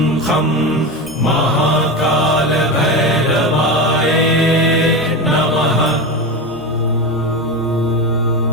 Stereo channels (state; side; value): normal; both; correlation 0.21